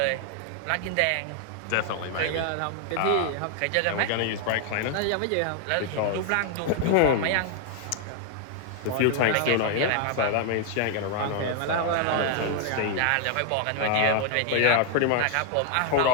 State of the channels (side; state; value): both; different; correlation 0.00